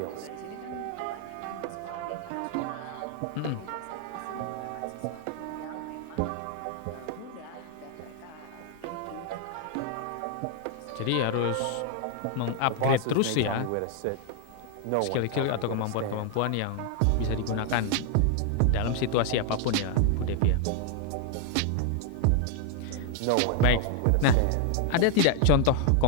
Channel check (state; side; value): different; both; correlation 0.00